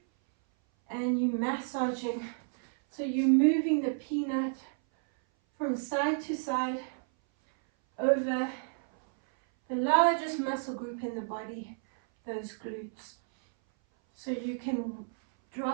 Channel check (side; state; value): left; silent; 57 dB below the other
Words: and you're massaging. So you're moving the peanut from side to side over the largest muscle group in the body, those glutes. So you can